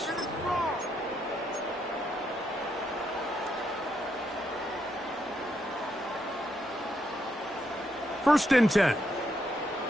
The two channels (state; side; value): normal; both; correlation 0.78